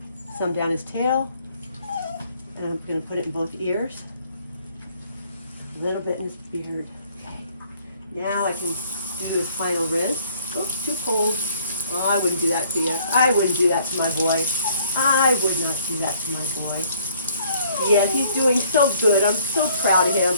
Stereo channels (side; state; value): both; inverted; correlation -0.61